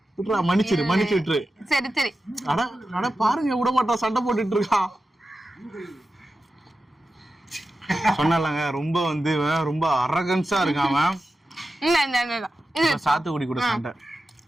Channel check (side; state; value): both; normal; correlation 0.92